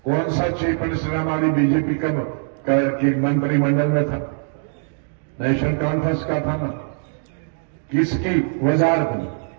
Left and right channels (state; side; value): silent; left; 64 dB below the other